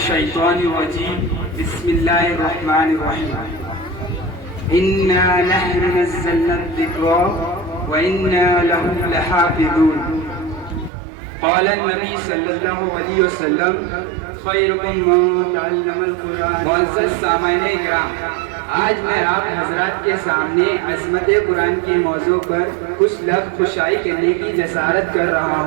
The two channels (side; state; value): left; drops out; at 10.9 s